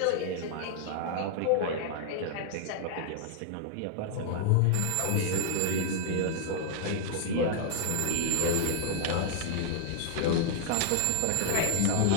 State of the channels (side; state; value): both; different; correlation -0.01